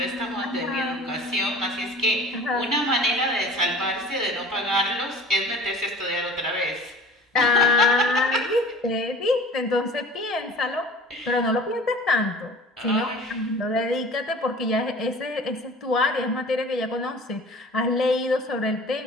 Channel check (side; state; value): both; normal; correlation 0.43